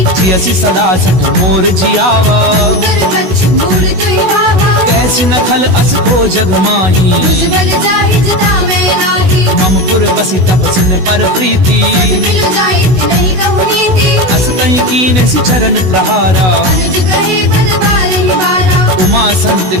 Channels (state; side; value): late; left; 16 ms